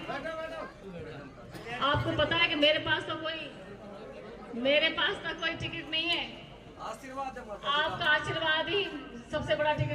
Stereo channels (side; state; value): both; identical; correlation 1.00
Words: आपको पता है कि मेरे पास तो कोई टिकट नहीं है। आपका आशीर्वाद ही सबसे बड़ा